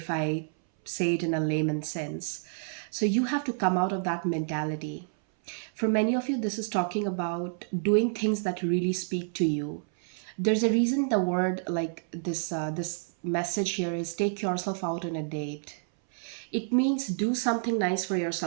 I say it in a layman sense. So you have to come out of that mentality. For many of you, this is talking about doing things that really speak to you. There's a reason the word like this message here is take yourself out on a date. It means do something nice for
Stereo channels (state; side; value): silent; left; 59 dB below the other